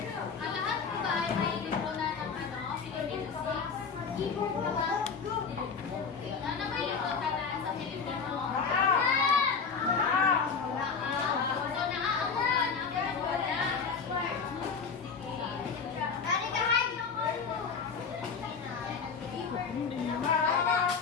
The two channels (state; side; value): quieter; right; 5.6 dB